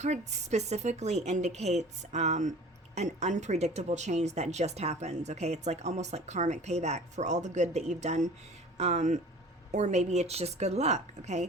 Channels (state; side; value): normal; both; correlation 0.43